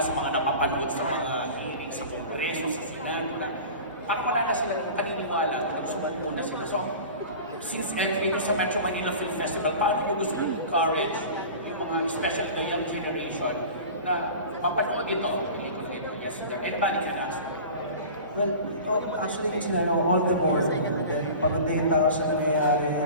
sa mga napapanood sa mga sa Kongreso, sa Senado na parang wala na sila paniniwala, nagsumalo na sila. So, since entry ko sa Metro Manila Film Festival, paano nyo gusto encourage yung mga, especially the young generation, na mapanood ito? Yes, sir. Anybody can ask. Well, actually, all the more. Pagod na yung tao sa nangyayari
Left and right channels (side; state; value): both; inverted; correlation -0.37